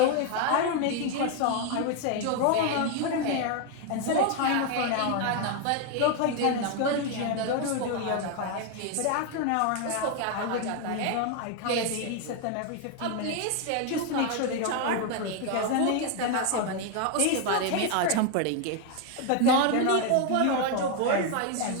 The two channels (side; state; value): both; different; correlation 0.01